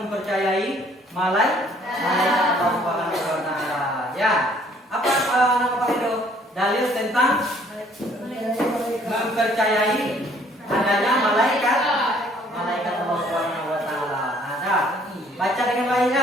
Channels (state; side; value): normal; both; correlation 0.60